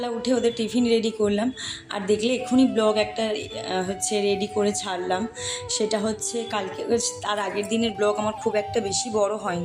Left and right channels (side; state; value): both; identical; correlation 1.00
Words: উঠে ওদের টিফিন রেডি করলাম, আর দেখলে এক্ষুনি ব্লগ একটা রেডি করে ছাড়লাম। সেটা হচ্ছে কালকে, তার আগের দিনের ব্লগ আমার খুব একটা বেশি বড়